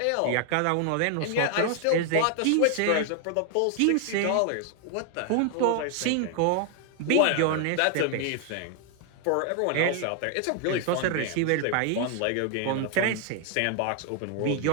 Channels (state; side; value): different; both; correlation 0.00